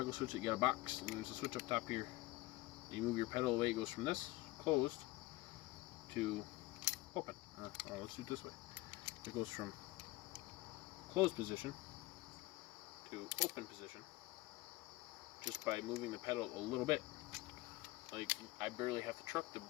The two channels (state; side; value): quieter; right; 19.5 dB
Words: switch that you got a box, and there's a switch up top here. You move your pedal away, it goes from this closed to open. Let's do it this way. It goes from closed position to open position just by moving the pedal a little bit. Like, I barely have to